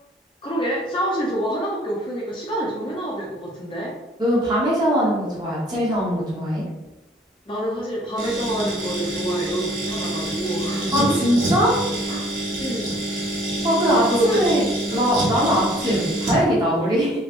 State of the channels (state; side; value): normal; both; correlation 0.56